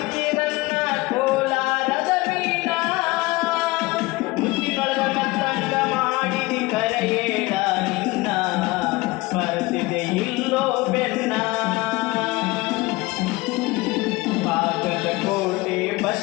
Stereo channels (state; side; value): quieter; right; 21.8 dB